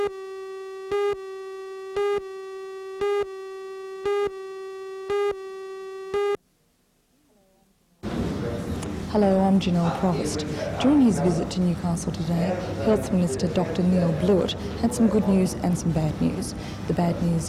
Hello, I'm Janelle Provost. During his visit to Newcastle today, Health Minister Dr Neil Blewett had some good news and some bad news. The bad news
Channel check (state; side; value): identical; both; correlation 1.00